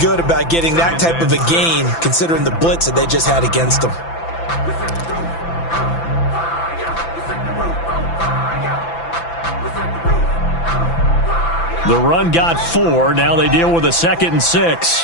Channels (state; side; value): late; right; 5.9 ms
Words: about getting that type of a gain, considering the blitz that they just had against them. The run got 4. Now they deal with a 2nd and